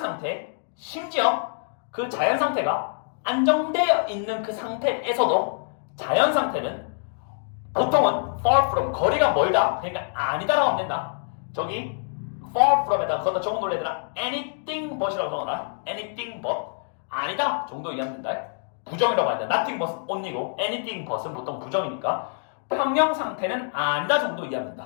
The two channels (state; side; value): silent; right; digital silence